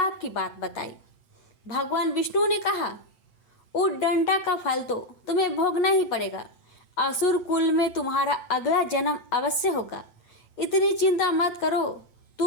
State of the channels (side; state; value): right; late; 9.1 ms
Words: की बात बताई। भगवान विष्णु ने कहा, उद्दंडा का फल तो तुम्हें भोगना ही पड़ेगा। असुर कुल में तुम्हारा अगला जन्म अवश्य होगा। इतनी चिंता मत करो,